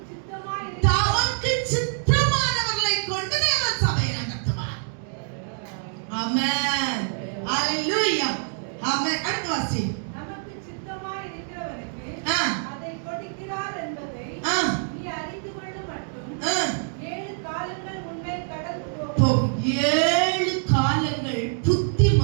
சித்தமாய் தமக்கு சித்தமானவர்களை கொண்டு தேவன் சபையை நடத்துவார். ஆமென். அல்லேலூயா. ஆமென். அடுத்த வாசி. நமக்கு சித்தமாய் இருக்கிறவனுக்கு அதை கொடுக்கிறார் என்பதை நீ அறிந்து கொள்ளும் மட்டும். 7 காலங்கள் உன்னை கடந்து போகும். 7 காலங்கள் புத்தி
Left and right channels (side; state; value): left; silent; 61 dB below the other